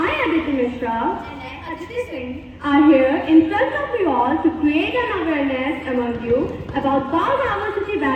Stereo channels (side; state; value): both; identical; correlation 1.00